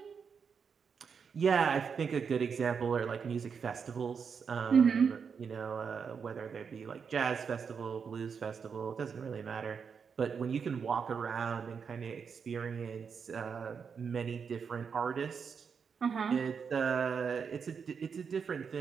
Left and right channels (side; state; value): left; quieter; 6.2 dB